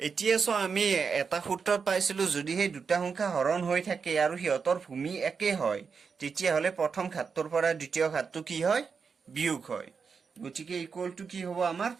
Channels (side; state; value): left; quieter; 5.6 dB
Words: এতিয়া চোৱা আমি এটা সূত্ৰত পাইছিলো যদি হে দুটা সংখ্যা হৰণ হৈ থাকে আৰু হিয়তৰ ভূমি একে হয় তেতিয়া হলে প্ৰথম ঘাতটোৰ পৰা দ্বিতীয় ঘাতটো কি হয় বিয়োগ হয় গতিকে ইকুৱেল টু কি হ'ব আমাৰ